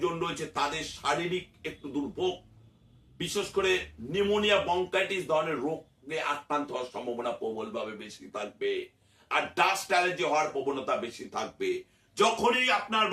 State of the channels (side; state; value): both; identical; correlation 1.00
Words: রয়েছে তাদের শারীরিক একটু দুর্ভোগ, বিশেষ করে নিউমোনিয়া বঙ্কাইটিস ধরনের রোগে আক্রান্ত হওয়ার সম্ভাবনা প্রবলভাবে বেশি থাকবে, আর ডাস্ট অ্যালার্জি হওয়ার প্রবণতা বেশি থাকবে। যখনই আপনার